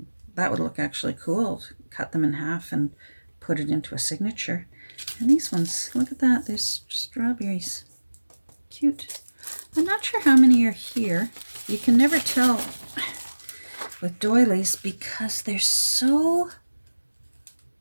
that would look actually cool. Cut them in half and put it into a signature. And these ones, look at that, there's strawberries. Cute. I'm not sure how many are here. You can never tell with doilies because they're so...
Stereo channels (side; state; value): both; inverted; correlation -1.00